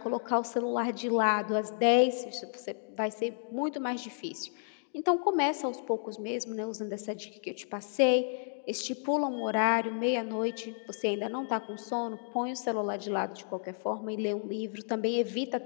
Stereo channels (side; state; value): right; silent; digital silence